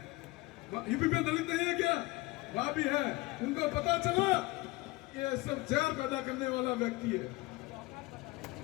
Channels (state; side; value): quieter; right; 21.7 dB